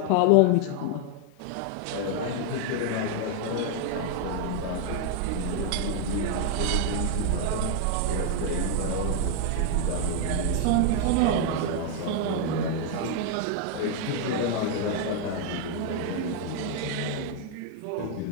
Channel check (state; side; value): different; both; correlation 0.00